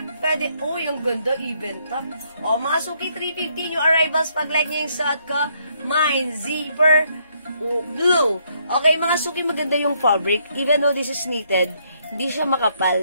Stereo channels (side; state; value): both; inverted; correlation -0.72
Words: Pwede, yung ganda, even tuck. O, mga suki, 350 new arrivals. Pag like nyo yung suot ko, mine, zipper, blue. Okay, mga suki, maganda yung fabric. Even though this is knitted, hindi siya